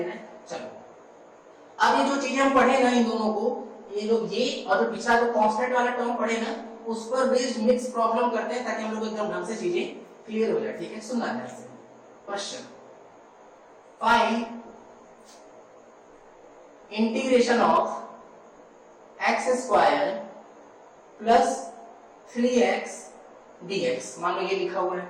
है। चलो अब ये जो चीजें हम पढ़े ना इन दोनों को, ये जो ये और जो पिछला जो कांस्टेंट वाला टर्म पढ़े ना, उस पर बेस्ड मिक्स प्रॉब्लम करते हैं ताकि हम लोग एकदम ढंग से चीजें क्लियर हो जाए। ठीक है, सुनना ध्यान से। Question, find integration of x square plus 3x dx। मान लो ये लिखा हुआ है।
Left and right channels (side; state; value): both; identical; correlation 1.00